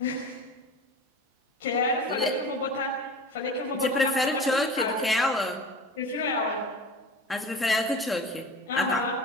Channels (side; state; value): both; normal; correlation 0.35